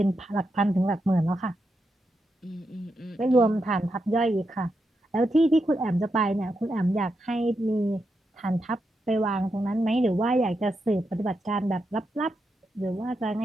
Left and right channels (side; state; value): both; normal; correlation 0.85